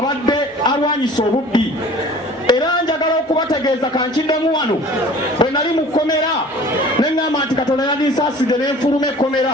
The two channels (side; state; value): both; normal; correlation 0.46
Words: alwanyisa obubbi. Era njagala okubategeeza kankiddemu wano bwe nali mu kkomera ne ŋŋamba nti Katonda yandinsaaside ne nfuluma ekkomera.